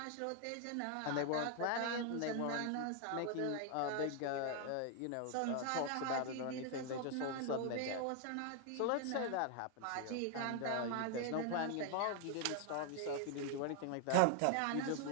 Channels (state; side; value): different; both; correlation 0.00